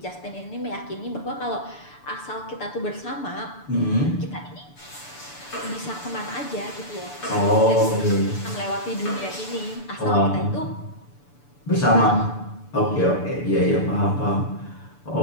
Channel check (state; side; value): late; right; 6.9 ms